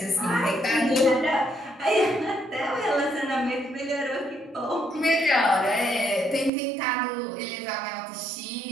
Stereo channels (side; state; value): left; drops out; at 6.5 s